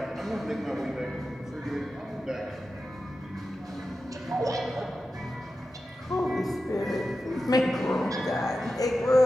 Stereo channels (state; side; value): normal; both; correlation 0.92